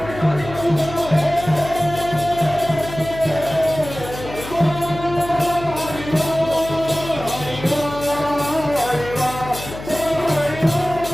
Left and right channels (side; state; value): left; noise; hum, 12 dB below the sound